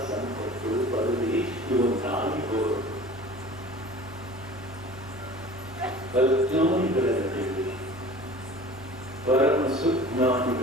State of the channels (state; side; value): normal; both; correlation 0.42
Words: ಸಂಪತ್ತು ಪದವಿ ಇವು ನಾಯಿಕೋರು. ಅಜ್ಞಾನಿಗಳ ನಡುವೆ, ಪರಮ